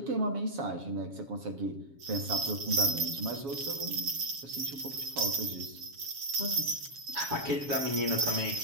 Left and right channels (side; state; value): left; late; 7.2 ms